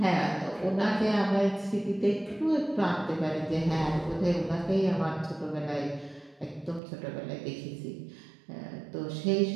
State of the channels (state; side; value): drops out; left; at 6.8 s